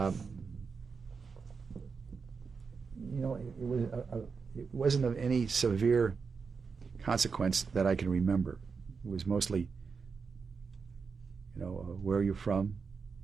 It wasn't of any severe consequence that I can remember. It was mostly, where are you from?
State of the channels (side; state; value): left; quieter; 5.3 dB